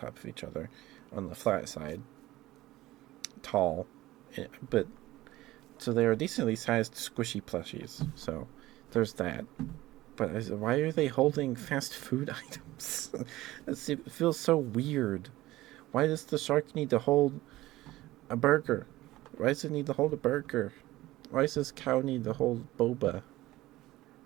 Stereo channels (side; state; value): left; quieter; 17.1 dB